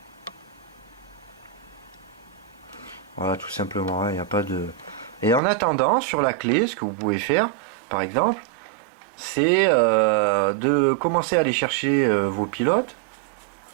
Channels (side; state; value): left; drops out; at 5.4 s